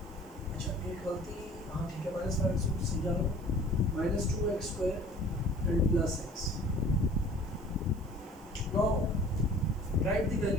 अच्छा एक गलती, हाँ ठीक है, -5x³ समझा लो, -2x² and +x. Now write the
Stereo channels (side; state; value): right; noise; hiss, 27 dB below the sound